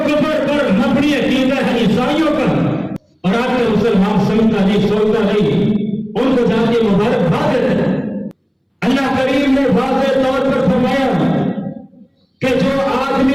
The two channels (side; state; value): both; identical; correlation 1.00